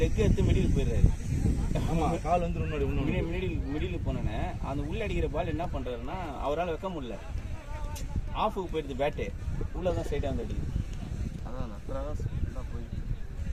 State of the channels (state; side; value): identical; both; correlation 1.00